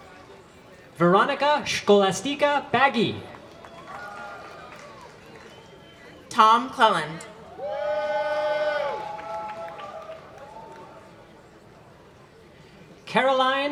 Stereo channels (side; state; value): both; identical; correlation 1.00